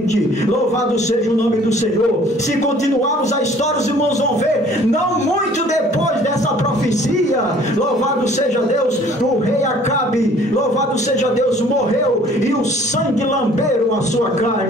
Louvado seja o nome do Senhor. Se continuarmos a história, os irmãos vão ver, não muito depois dessa profecia, louvado seja Deus, o rei Acabe, louvado seja Deus, morreu e o sangue lamberam a sua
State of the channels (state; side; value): normal; both; correlation 0.54